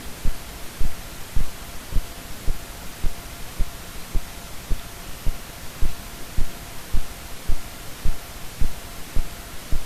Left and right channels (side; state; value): both; identical; correlation 1.00